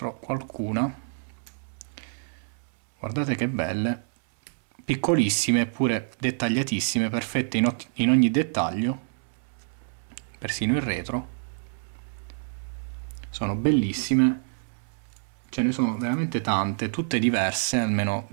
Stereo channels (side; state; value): left; silent; digital silence